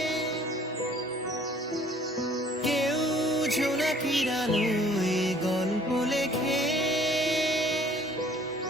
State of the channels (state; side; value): normal; both; correlation 0.55